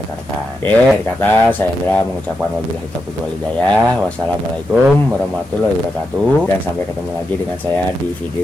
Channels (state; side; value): normal; both; correlation 0.86